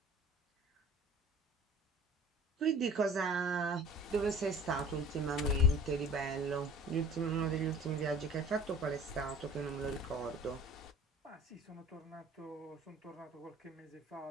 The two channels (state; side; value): normal; both; correlation 0.46